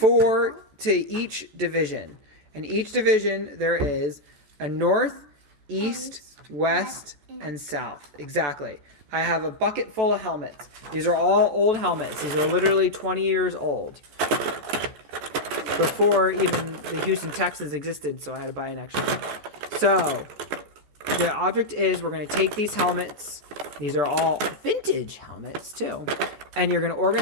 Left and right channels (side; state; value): left; late; 14 ms